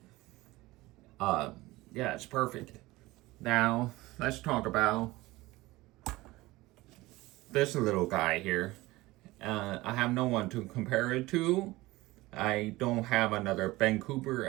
Yeah, it's perfect. Now let's talk about this little guy here. I have no one to compare it to. I don't have another Ben Cooper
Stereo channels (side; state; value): left; quieter; 19.6 dB